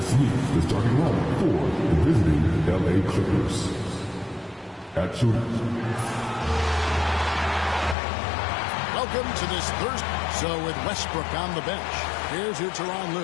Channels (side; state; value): right; drops out; at 8.0 s